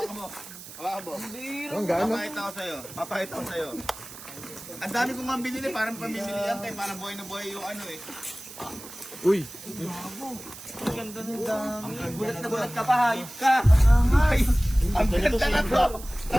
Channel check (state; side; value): noise; right; hiss, 15 dB below the sound